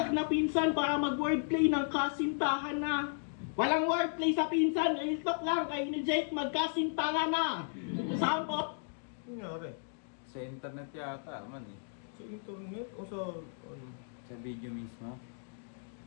na pinsan para mag-wordplay ng kasintahan na. Walang wordplay sa pinsan, real talk lang kayo ni Jake magkasintahan na. Sample, Nangyari? Sa internet yata, man eh. Sa internet o sa ano? Sa video mismo.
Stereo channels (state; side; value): silent; right; digital silence